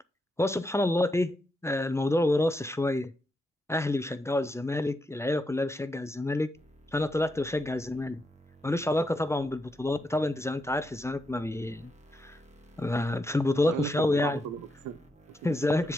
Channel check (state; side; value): normal; both; correlation 0.82